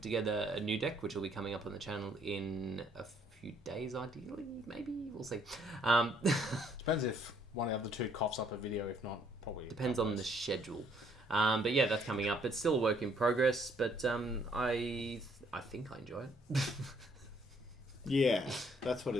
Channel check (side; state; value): both; normal; correlation 0.66